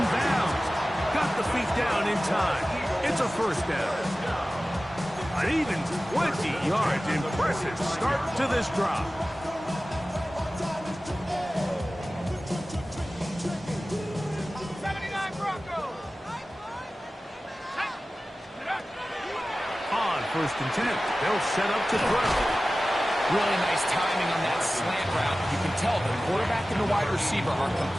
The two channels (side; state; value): both; normal; correlation 0.96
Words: bounds. Got the feet down in time. It's a 1st down. An even 20 yards. Impressive start to this drive. On 1st and 10, they'll set up to throw. Really nice timing on that slant route. You can tell the quarterback and the wide receiver are